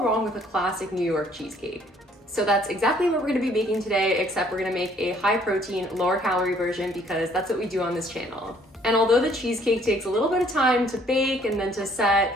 wrong with a classic New York cheesecake. So that's exactly what we're gonna be making today, except we're gonna make a high protein, lower calorie version because that's what we do on this channel. And although the cheesecake takes a little bit of time to bake and then to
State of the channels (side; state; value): both; normal; correlation 0.62